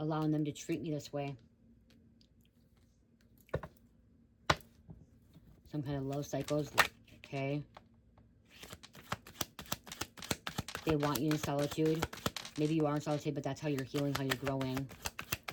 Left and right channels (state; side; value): identical; both; correlation 1.00